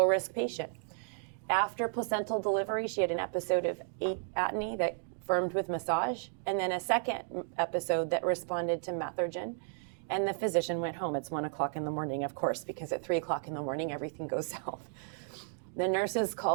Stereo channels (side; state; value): left; silent; 56 dB below the other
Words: patient. After placental delivery, she had an episode of atony that firmed with massage, and then a second episode that responded to Methergin, and the physician went home. It's 1 o'clock in the morning, of course, because at 3 o'clock in the morning, everything goes south. The nurses